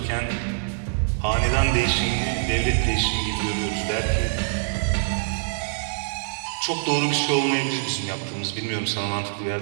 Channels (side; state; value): left; silent; digital silence